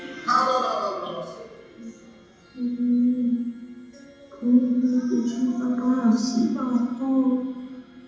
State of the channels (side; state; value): both; identical; correlation 1.00